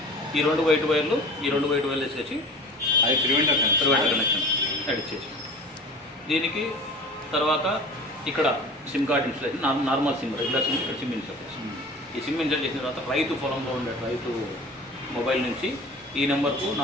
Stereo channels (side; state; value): both; normal; correlation 0.39